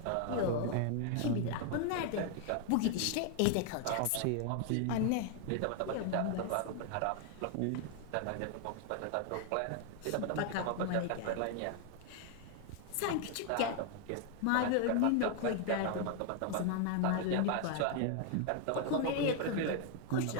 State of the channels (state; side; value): different; both; correlation 0.00